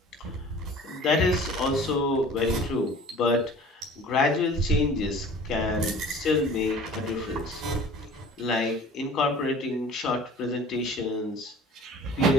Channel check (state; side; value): normal; both; correlation 0.45